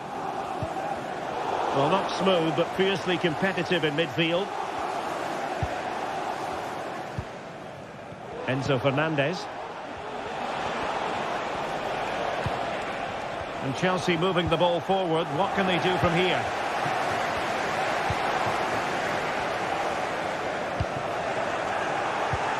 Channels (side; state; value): both; identical; correlation 1.00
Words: Well, not smooth, but fiercely competitive in midfield. Enzo Fernandez. And Chelsea moving the ball forward. What can they do from here?